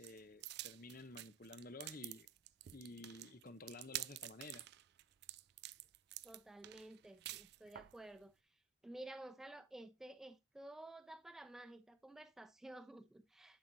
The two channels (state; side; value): quieter; left; 4.7 dB